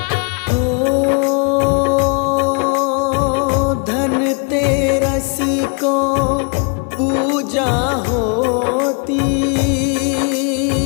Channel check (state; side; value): quieter; right; 36.5 dB